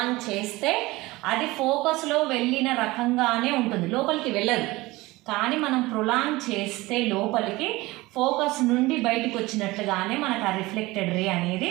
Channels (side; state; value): left; quieter; 20.5 dB